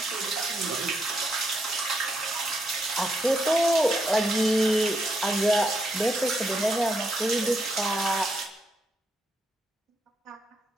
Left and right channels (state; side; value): normal; both; correlation 0.79